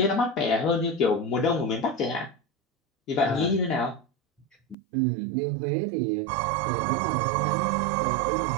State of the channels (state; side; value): drops out; left; at 4.8 s